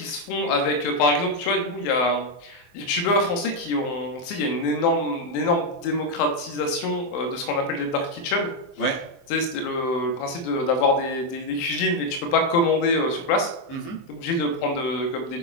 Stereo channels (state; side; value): late; right; 23 ms